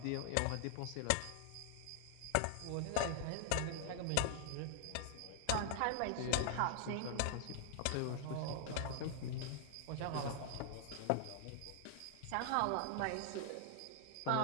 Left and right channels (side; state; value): both; different; correlation 0.00